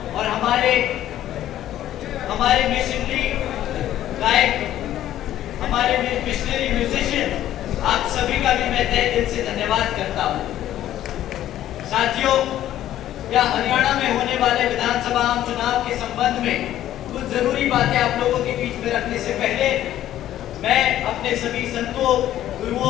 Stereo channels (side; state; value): right; quieter; 12.6 dB